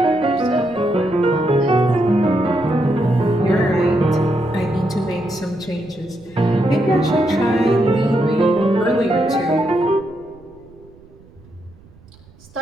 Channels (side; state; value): right; noise; rumble, 25 dB below the sound